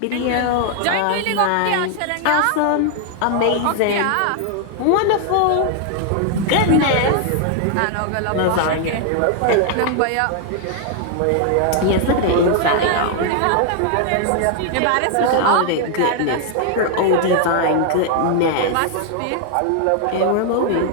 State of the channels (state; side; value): different; both; correlation 0.00